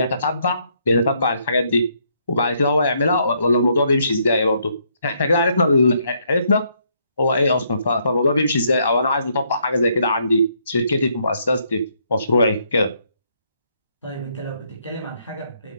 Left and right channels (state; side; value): inverted; both; correlation -0.72